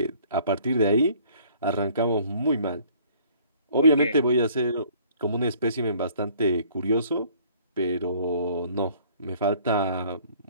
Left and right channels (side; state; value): both; inverted; correlation -0.57